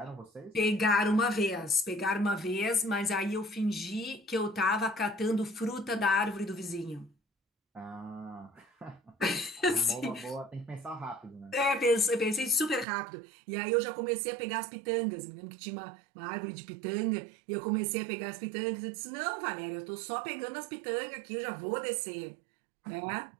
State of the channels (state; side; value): drops out; left; at 12.9 s